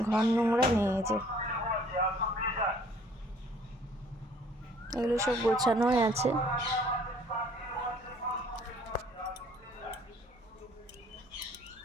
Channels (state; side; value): normal; both; correlation 0.57